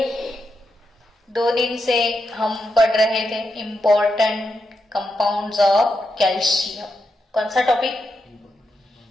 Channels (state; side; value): normal; both; correlation 0.85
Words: 2 दिन से हम पढ़ रहे थे इम्पोर्टेंट कंपाउंड्स ऑफ कैल्शियम। कौन सा topic?